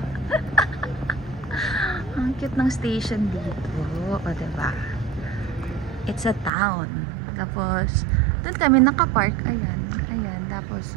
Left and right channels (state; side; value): drops out; left; at 6.5 s